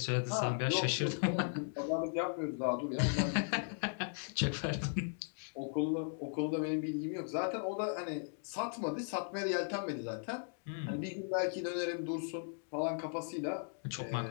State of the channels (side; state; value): right; silent; digital silence